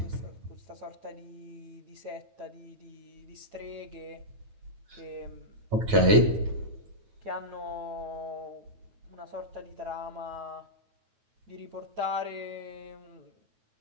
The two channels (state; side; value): late; left; 9.3 ms